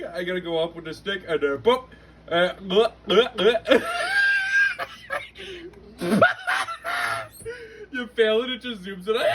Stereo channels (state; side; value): identical; both; correlation 1.00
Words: I gotta go up with the stick and boop. You fail it, it just zooms it